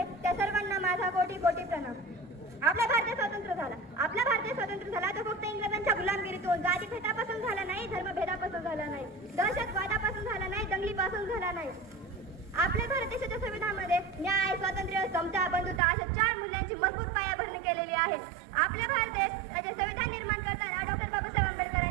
त्या सर्वांना माझा कोटी कोटी प्रणाम. आपला भारत स्वतंत्र झाला. आपला भारत स्वतंत्र झाला तो फक्त इंग्रजांच्या गुलामगिरीतून, जातीभेदापासून झाला नाही, धर्मभेदापासून झाला नाही, दहशतवादापासून झाला नाही, दंगलीपासून झाला नाही. आपल्या भारत देशाच्या संविधानामध्ये न्याय, स्वातंत्र्य, समता, बंधुता अशा 4 मूल्यांची मजबूत पायाभरणी केलेली आहे. आपल्या भारत देशाचे संविधान निर्माण करताना डॉक्टर बाबासाहेब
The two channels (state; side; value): drops out; left; at 15.8 s